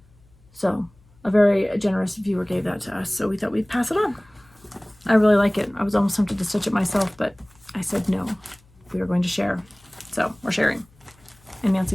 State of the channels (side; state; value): left; noise; hum, 30 dB below the sound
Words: So a very generous viewer gave that to us, so we thought we'd pass it on. I really like it. I was almost tempted to stitch it myself, but I said no. We were going to share. So we're sharing. And